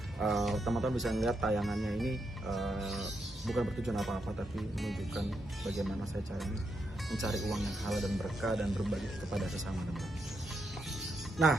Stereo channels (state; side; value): normal; both; correlation 0.82